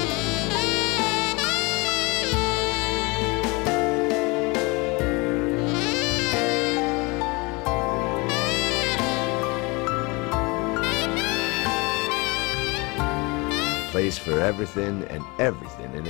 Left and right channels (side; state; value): right; quieter; 26.4 dB